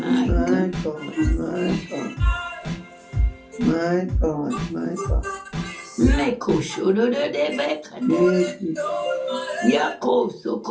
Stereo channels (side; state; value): both; identical; correlation 1.00